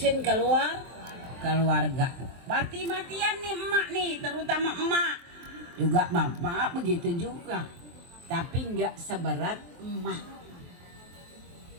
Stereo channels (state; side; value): late; left; 23 ms